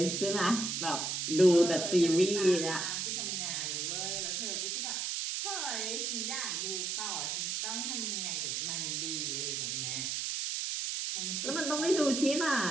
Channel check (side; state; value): right; noise; hiss, 1 dB below the sound